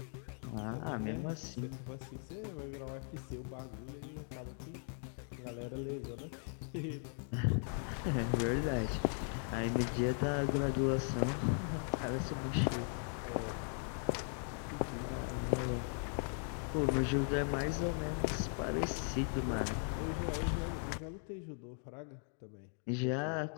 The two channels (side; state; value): right; silent; 52 dB below the other